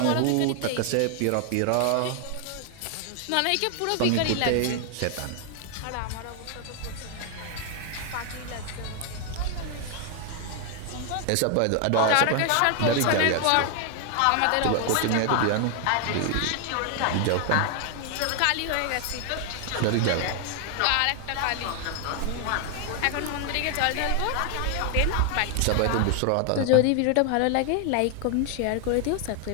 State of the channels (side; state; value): both; different; correlation 0.00